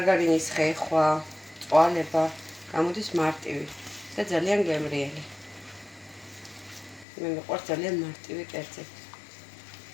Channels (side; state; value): right; drops out; at 7.1 s